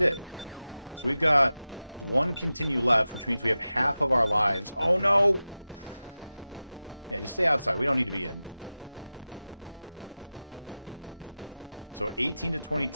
So we've got one continue left, which means we have half of our lives. Oh, no! Yeah, just stay outside. We don't need to be in. So 18 to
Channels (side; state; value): both; inverted; correlation -0.94